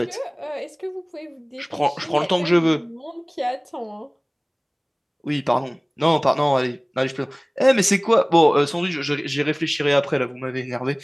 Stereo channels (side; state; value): both; identical; correlation 1.00